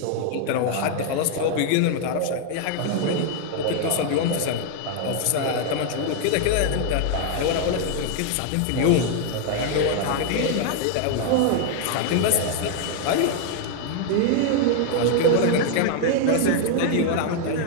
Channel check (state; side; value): different; both; correlation 0.00